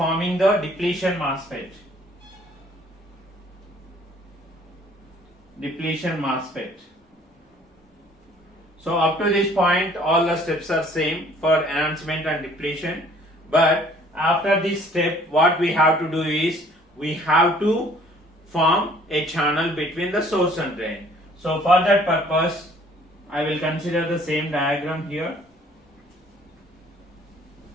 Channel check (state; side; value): normal; both; correlation 0.57